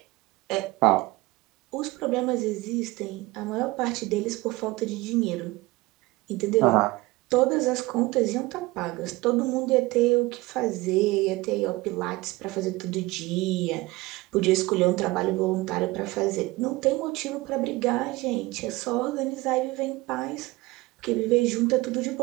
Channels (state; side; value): quieter; left; 21.2 dB